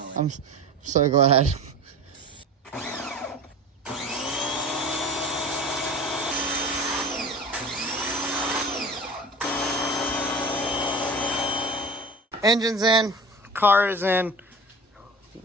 it. I'm so glad. Engine's in, car is in,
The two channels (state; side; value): normal; both; correlation 0.36